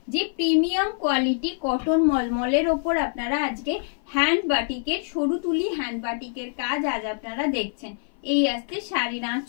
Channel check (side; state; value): right; silent; 56 dB below the other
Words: যে premium quality cotton মলমলের ওপর আপনারা আজকে hand বাটিকের সরু তুলি হ্যান্ড বাটিকের কাজ আজ আপনারা দেখছেন। এই আসছে শাড়ির